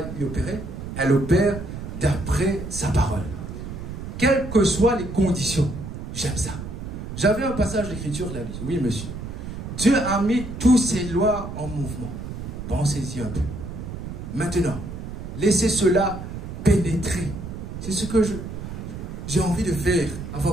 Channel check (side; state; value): right; noise; rumble, 8 dB below the sound